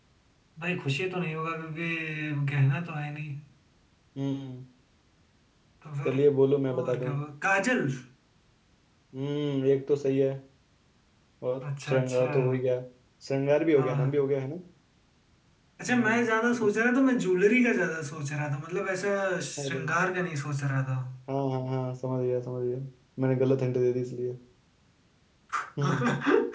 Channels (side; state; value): both; identical; correlation 1.00